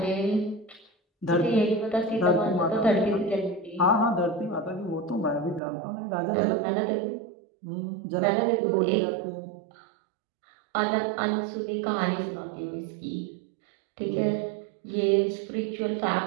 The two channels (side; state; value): left; drops out; at 5.6 s